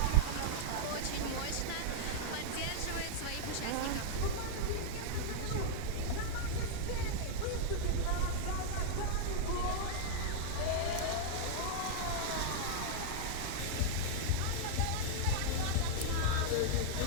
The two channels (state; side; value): different; both; correlation -0.01